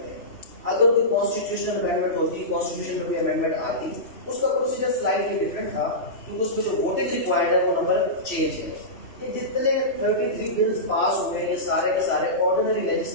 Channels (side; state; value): right; late; 3.1 ms